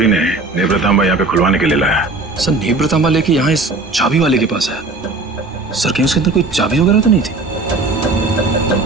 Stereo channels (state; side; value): quieter; left; 3.4 dB